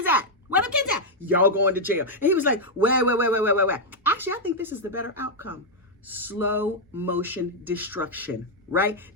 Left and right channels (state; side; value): normal; both; correlation -0.02